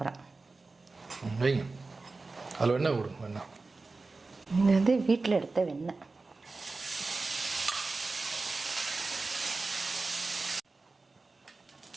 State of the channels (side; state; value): left; quieter; 3.7 dB